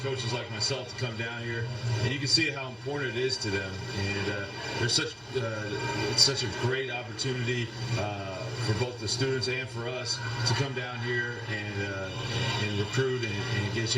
like myself to come down here, and you can see how important it is to them. And it's such a great opportunity for both the students and for us to come down here and recruit and get a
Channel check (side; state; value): both; identical; correlation 1.00